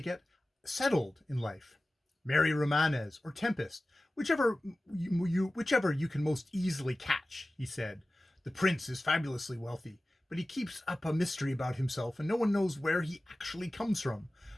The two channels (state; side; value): normal; both; correlation 0.96